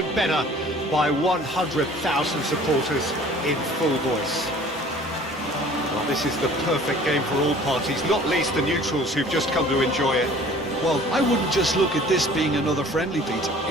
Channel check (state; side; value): normal; both; correlation 0.49